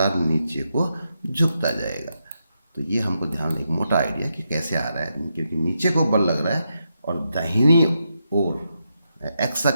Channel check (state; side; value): inverted; both; correlation -0.84